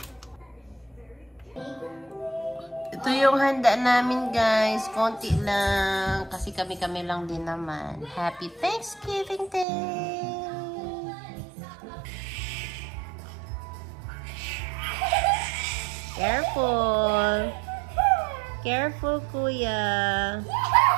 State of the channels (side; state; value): left; drops out; at 9.7 s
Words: Ito yung handa namin, guys. Konti lang. Kasi kami-kami lang din naman. Happy Thanksgiving Day! Careful! Careful, kuya!